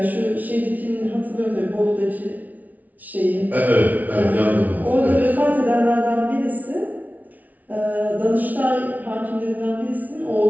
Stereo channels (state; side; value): late; left; 0.075 ms